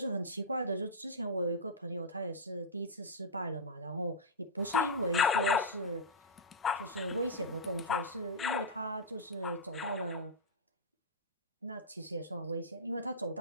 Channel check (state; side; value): normal; both; correlation -0.12